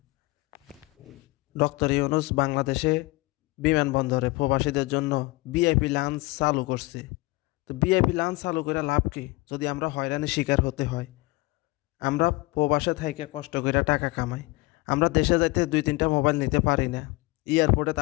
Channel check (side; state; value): right; quieter; 22.7 dB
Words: ডক্টর ইউনূস বাংলাদেশে বিমানবন্দরে প্রবাসীদের জন্য ভিআইপি লাঞ্চ চালু করছে। তো ভিআইপি লাঞ্চ চালু করে লাভ কি যদি আমরা হয়রানির শিকার হতে হয়? আমরা প্রবাসে থাইকে কষ্ট করে টাকা কামাই, আমরা দেশে যাইতে 2-3টা মোবাইল নিতে পারি না। এয়ারপোর্টে